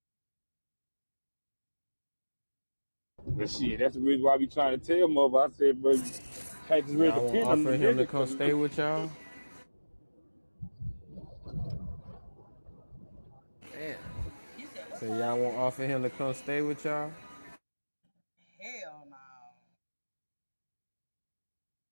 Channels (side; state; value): both; inverted; correlation -1.00